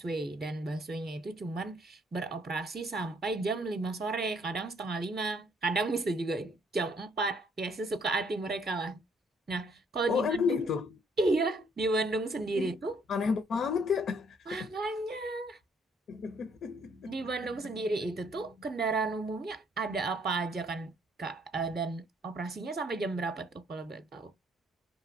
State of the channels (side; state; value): both; normal; correlation 0.66